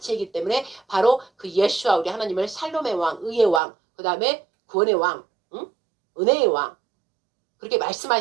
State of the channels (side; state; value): left; drops out; at 3.6 s